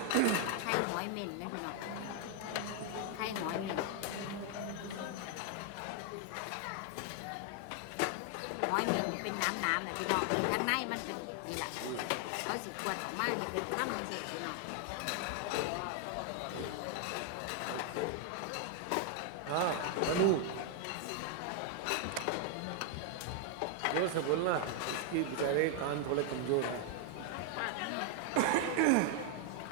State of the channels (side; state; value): both; different; correlation 0.00